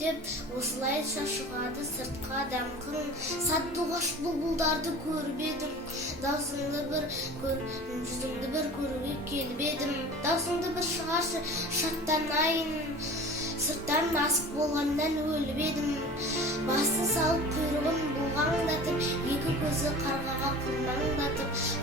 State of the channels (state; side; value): normal; both; correlation 0.39